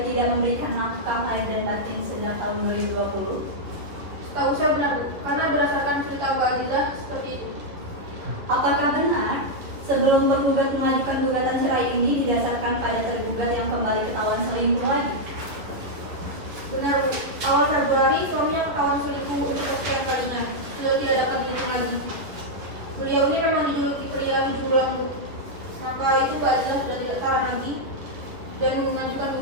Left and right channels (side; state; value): left; late; 10 ms